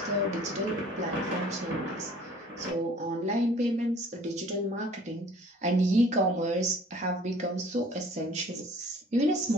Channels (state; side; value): normal; both; correlation 0.52